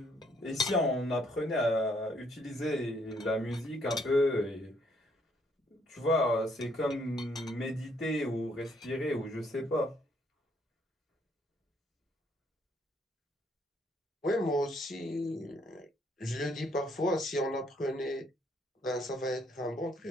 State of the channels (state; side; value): normal; both; correlation 0.69